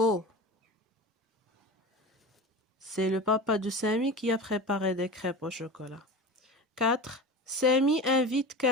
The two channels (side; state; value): both; normal; correlation 0.31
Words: C'est le papa de Samy qui a préparé des crêpes au chocolat. 4. Samy invite